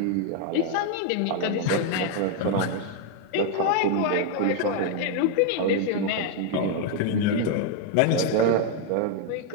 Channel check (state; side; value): different; both; correlation 0.01